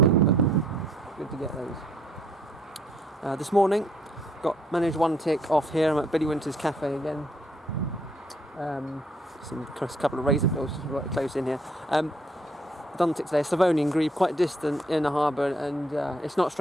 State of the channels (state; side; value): normal; both; correlation 0.66